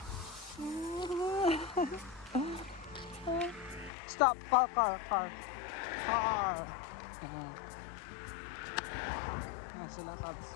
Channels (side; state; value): right; drops out; at 3.9 s